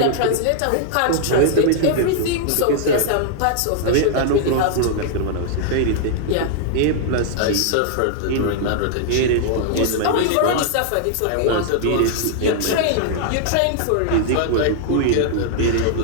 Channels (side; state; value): both; different; correlation -0.01